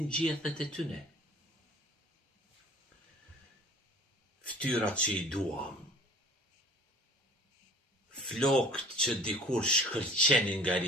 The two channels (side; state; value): both; normal; correlation 0.48